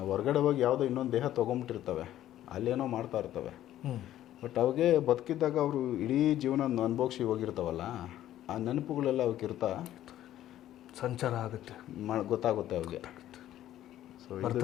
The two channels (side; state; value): right; quieter; 12.8 dB